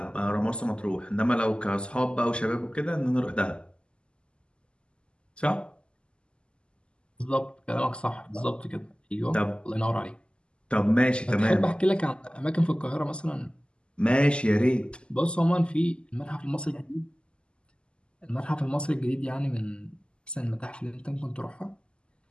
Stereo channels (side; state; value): right; late; 0.051 ms